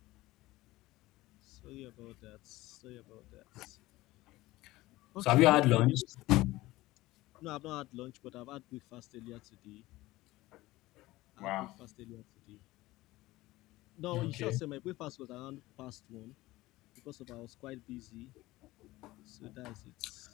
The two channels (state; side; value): quieter; right; 18.4 dB